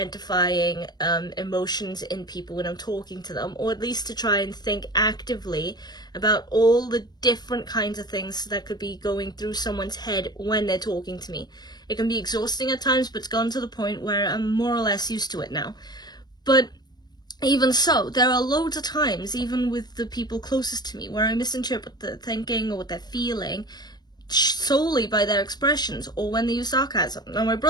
emotions in people when I'm talking to them, or at least to try and think actively about all the different kinds of things that could be going through someone's head when they're talking to me. It can be exhausting at times, but it's gone to the point where I'm more or less used to it now. But even so, there are loads of times, even with the people closest to me, where I misinterpret the thinking or what they're feeling solely by their expressions or when they use sarcasm. Now, my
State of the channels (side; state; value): right; late; 0.20 ms